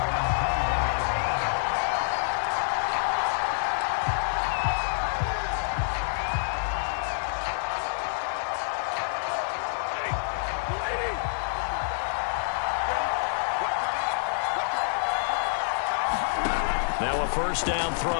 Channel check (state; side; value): silent; right; 60 dB below the other